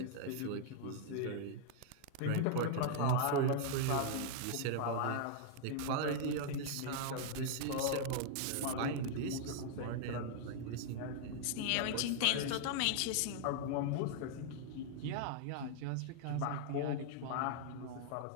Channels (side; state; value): both; different; correlation -0.01